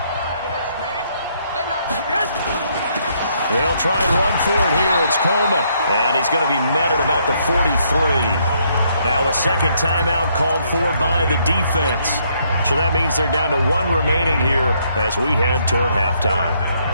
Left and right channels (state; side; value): inverted; both; correlation -0.71